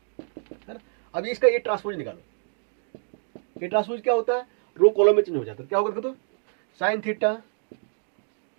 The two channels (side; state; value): left; silent; 55 dB below the other